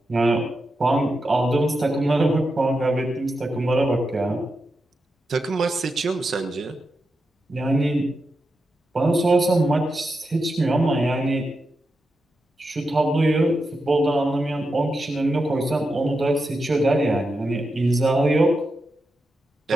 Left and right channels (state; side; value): normal; both; correlation 0.88